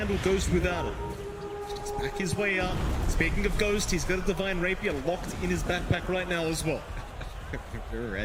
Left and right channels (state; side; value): identical; both; correlation 1.00